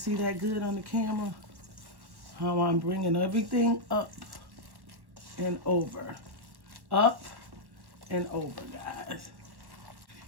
see that good on the camera? How I'm bringing everything up and over. Up and over, guys.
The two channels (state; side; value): late; left; 1.1 ms